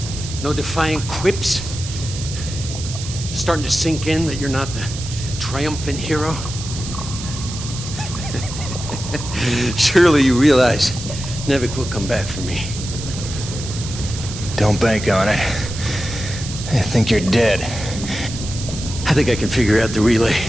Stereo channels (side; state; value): right; noise; hiss, 10 dB below the sound